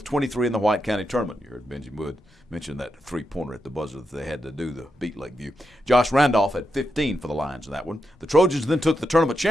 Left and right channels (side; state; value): both; normal; correlation 0.86